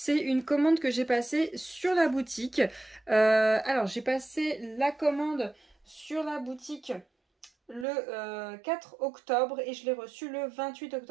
une commande que j'ai passée sur la boutique. Alors j'ai passé la commande sur la boutique le 4 octobre et je l'ai reçue le 28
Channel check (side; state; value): left; drops out; at 7.9 s